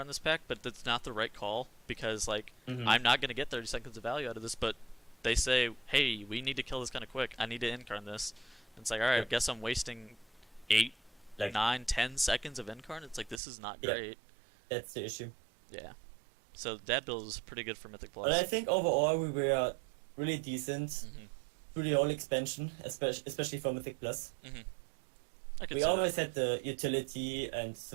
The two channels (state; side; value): drops out; left; at 13.4 s